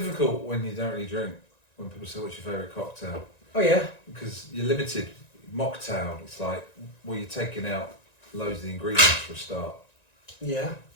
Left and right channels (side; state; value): right; late; 1.9 ms